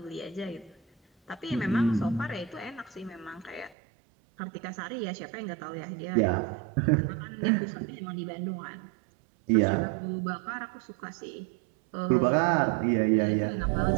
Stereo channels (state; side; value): drops out; left; at 3.8 s